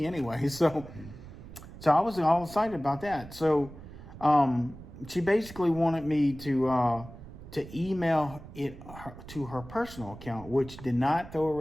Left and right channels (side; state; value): right; noise; rumble, 15 dB below the sound